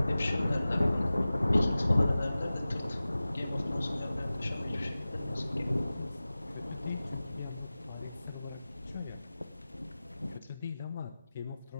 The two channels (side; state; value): both; inverted; correlation -0.97